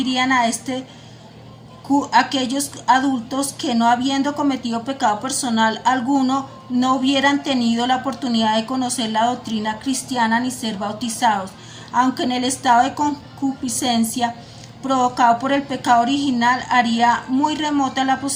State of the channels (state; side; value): identical; both; correlation 1.00